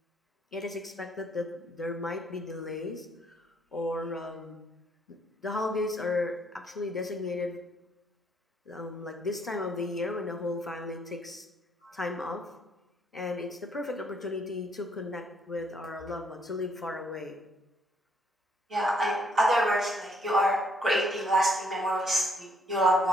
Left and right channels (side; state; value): both; normal; correlation 0.68